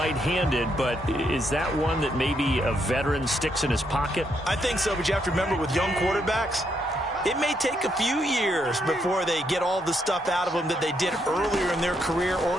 but is that one that maybe a veteran sticks in his pocket? I think so, but you have to remember with young quarterbacks, it may take a few years before they get all the stuff out of them that they did earlier in their career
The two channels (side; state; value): both; normal; correlation 0.76